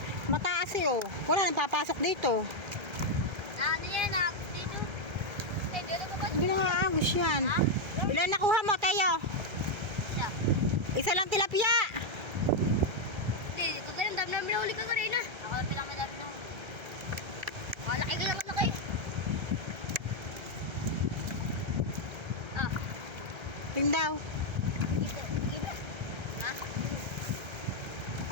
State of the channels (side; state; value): left; late; 1.3 ms